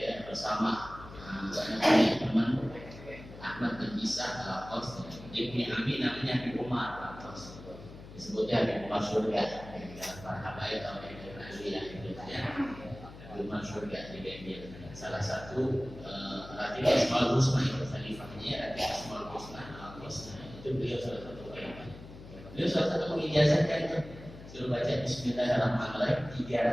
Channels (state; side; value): noise; left; hum, 16 dB below the sound